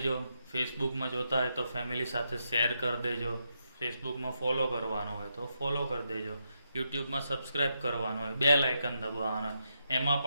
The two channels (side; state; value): both; inverted; correlation -0.82